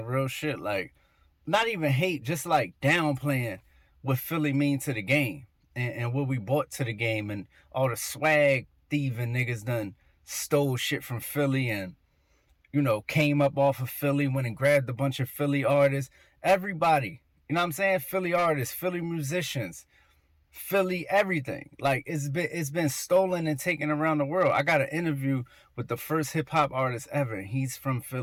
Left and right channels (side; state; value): both; identical; correlation 1.00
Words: real shit. Like, not even hate, just like downplaying what Philly mean to the game, and what we brought to the game, and all the swag thieving niggas done stole shit from Philly, and came up off of Philly, went and grabbed a bunch of Philly artists. Everybody, you know what I'm saying? Philly artists, Philly musicians, Philly everything. Like, it's been stolen and taken around the world. I got an interview with the first hip hop artist ever, and he's from